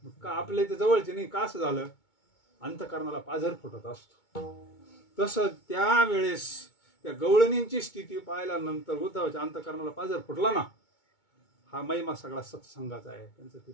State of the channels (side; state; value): right; late; 2.2 ms